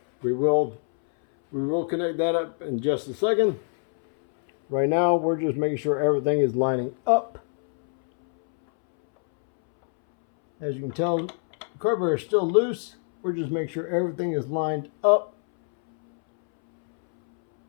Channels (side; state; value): right; silent; 62 dB below the other